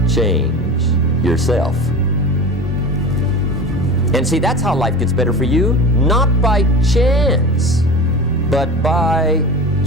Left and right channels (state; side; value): normal; both; correlation 0.31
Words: change yourself. And see, that's how life gets better for you, not by chance, but by